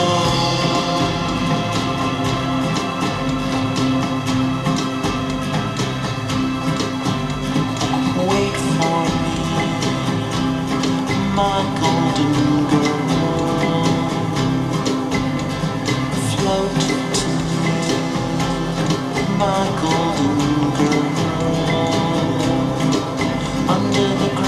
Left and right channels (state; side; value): identical; both; correlation 1.00